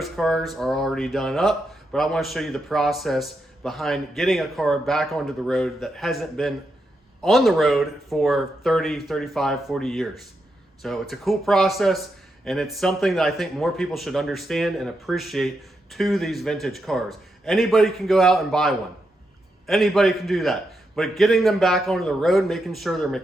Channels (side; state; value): both; normal; correlation 0.84